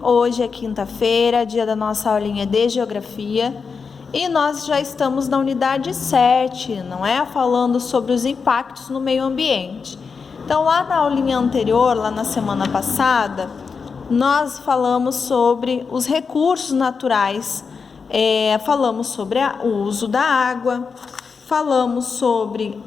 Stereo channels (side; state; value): right; quieter; 5.4 dB